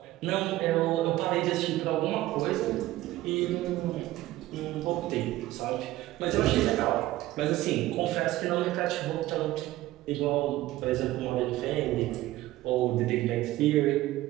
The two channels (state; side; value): quieter; left; 16.3 dB